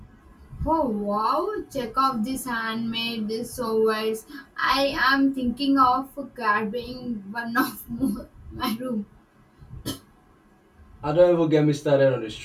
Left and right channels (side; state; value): both; identical; correlation 1.00